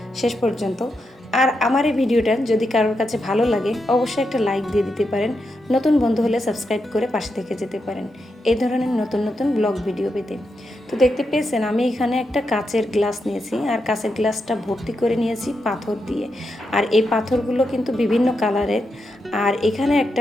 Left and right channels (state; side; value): normal; both; correlation 0.85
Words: শেষ পর্যন্ত। আর আমার এই ভিডিওটা যদি কারোর কাছে ভালো লাগে অবশ্যই একটা লাইক দিয়ে দিতে পারেন। নতুন বন্ধু হলে সাবস্ক্রাইব করে পাশে থেকে যেতে পারেন এই ধরনের নতুন নতুন ব্লগ ভিডিও পেতে। তো দেখতে পেয়েছেন আমি এখানে একটা কাচের গ্লাস নিয়েছি, আর কাচের গ্লাসটা ভর্তি করে নিয়েছি পাথর দিয়ে। আর এই পাথরগুলো কিন্তু বিভিন্ন কালারের। আর এখানে একটা